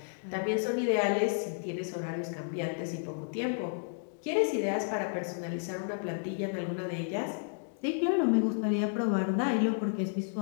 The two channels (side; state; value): right; silent; digital silence